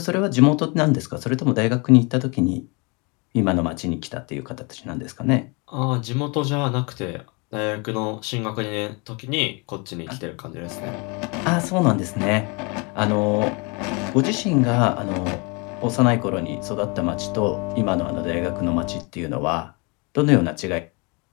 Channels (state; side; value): quieter; right; 30.4 dB